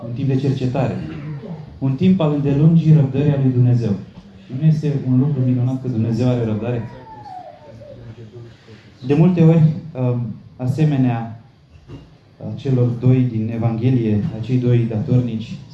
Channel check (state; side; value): identical; both; correlation 1.00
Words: un timp de cercetare, un timp al îndelungii răbdării a lui Dumnezeu. Și nu este un lucru minunat că Dumnezeu are răbdare? De multe ori, asemenea celor doi din Evanghelie, acei doi datornici,